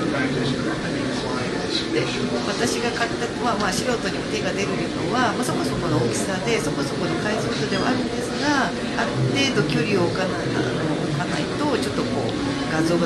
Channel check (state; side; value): identical; both; correlation 1.00